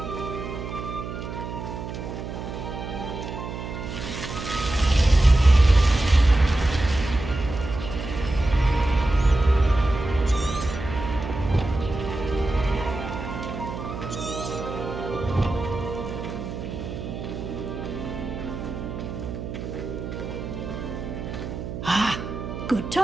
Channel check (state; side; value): noise; right; hum, 7 dB below the sound